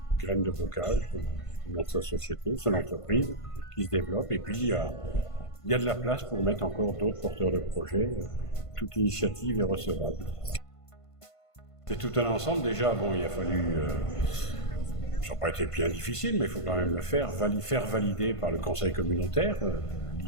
graines de bocage, dans sa société, son entreprise qui se développe. Et puis il y a de la place pour mettre encore d'autres porteurs de projets. Toute initiative est recevable. C'est tout un ensemble. Déjà, bon, il a fallu... ça n'a pas été bien difficile, mais il faut quand même le faire valider par le conseil communautaire,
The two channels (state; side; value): late; right; 1.5 ms